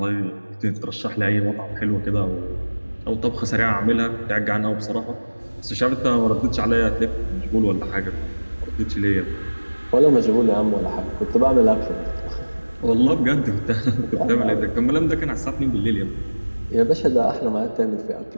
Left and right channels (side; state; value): both; inverted; correlation -1.00